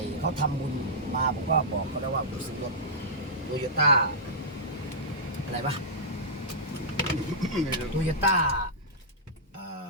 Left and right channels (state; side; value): normal; both; correlation -0.13